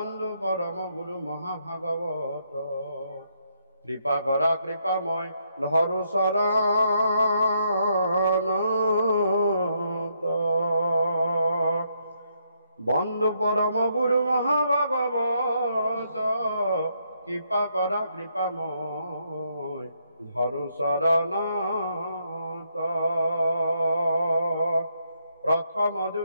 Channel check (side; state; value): both; inverted; correlation -0.75